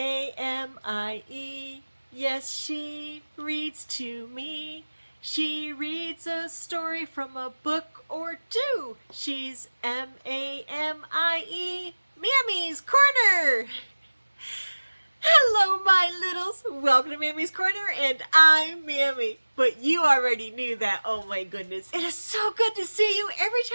Yes, she reads to me. She reads a story from a book or two. She's Mamie. Mammy's Corner. Hello, my littles. Welcome to Mammy's Corner, and I'm Mammy. But you already knew that. Oh my goodness. It is so good to see you. Every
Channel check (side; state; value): both; inverted; correlation -1.00